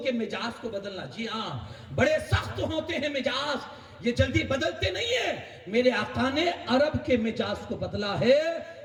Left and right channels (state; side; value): identical; both; correlation 1.00